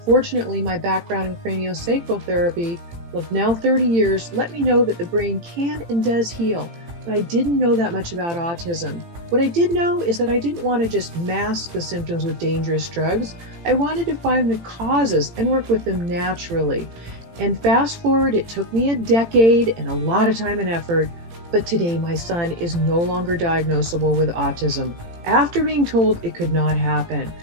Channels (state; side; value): late; left; 18 ms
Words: Fortunately, my background in craniosacral therapy of now 30 years let me know that the brain can and does heal, but I didn't know that much about autism. What I did know is that I didn't want to just mask the symptoms with dangerous drugs. I wanted to find the causes and work with them naturally. And fast forward, it took me a decade and a lot of time and effort, but today my son is no longer diagnosable with autism after being told it could not happen.